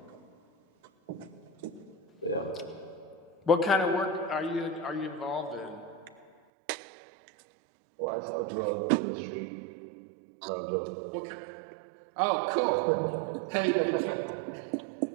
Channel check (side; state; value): left; drops out; at 6.3 s